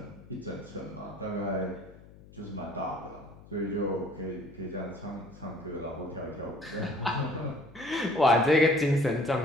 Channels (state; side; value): noise; left; hum, 21 dB below the sound